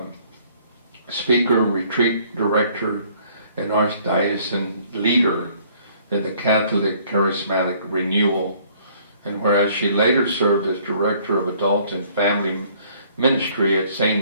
speaker, retreat director, and archdiocesan leader in the Catholic Charismatic Renewal, and whereas she later served as director of adult and family ministry at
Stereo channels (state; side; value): inverted; both; correlation -0.60